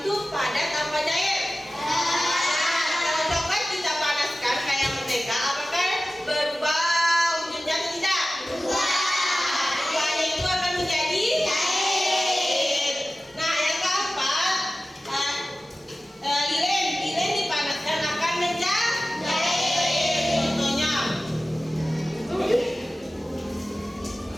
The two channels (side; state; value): both; normal; correlation 0.96